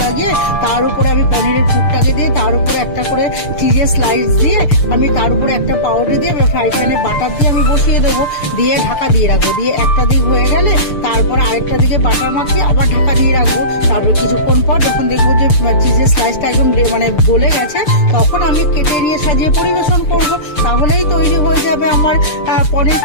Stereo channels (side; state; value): right; late; 6.7 ms